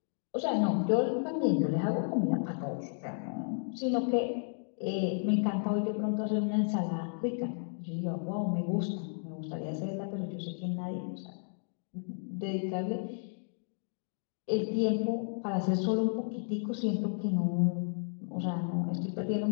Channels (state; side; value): silent; right; digital silence